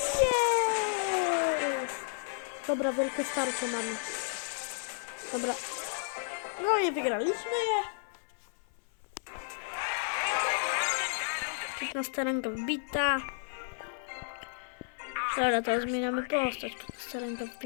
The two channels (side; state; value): right; silent; 55 dB below the other